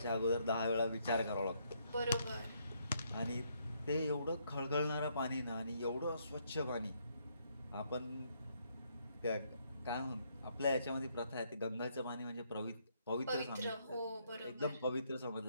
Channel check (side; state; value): both; inverted; correlation -0.73